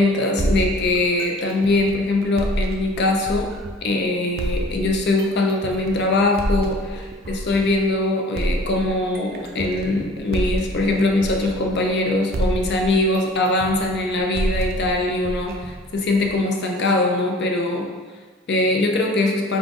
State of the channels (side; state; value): both; normal; correlation 0.48